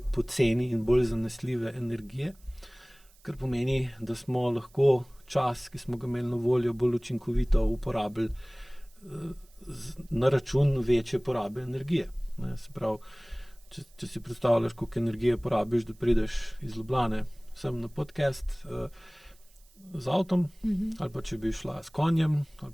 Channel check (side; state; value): right; noise; hiss, 29 dB below the sound